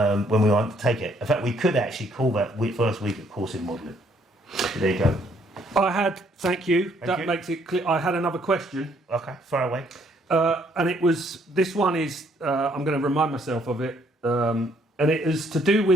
we undertake it. In fact, we could actually call that first week of course in modelling. There you go. Thank you. Thank you. Makes it clear. I had another question. Okay, far away. And this one is, I'm going to remind myself of it, and it is to do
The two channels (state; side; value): normal; both; correlation 0.67